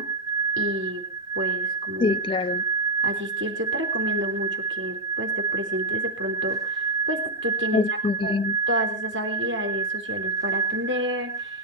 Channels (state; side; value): normal; both; correlation 0.01